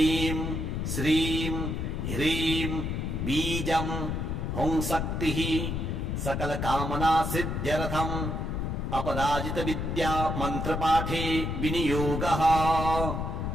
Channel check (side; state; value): left; noise; rumble, 2 dB below the sound